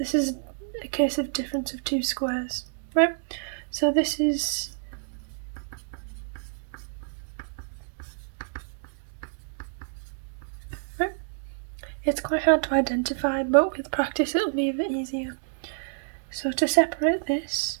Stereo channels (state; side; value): silent; left; digital silence